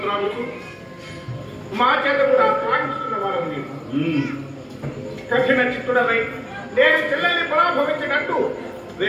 మా చేత కూడా త్రాగిస్తున్న వారు నీవు కఠిన చిత్తుడవై నేను చెల్లెల్ని పరాభవించినట్టు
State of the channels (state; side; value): identical; both; correlation 1.00